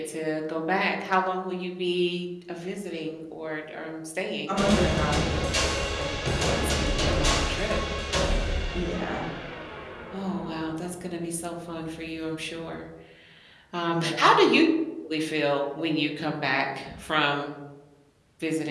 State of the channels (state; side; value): identical; both; correlation 1.00